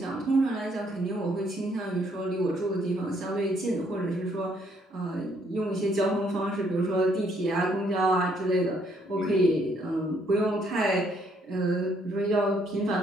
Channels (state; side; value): normal; both; correlation 0.69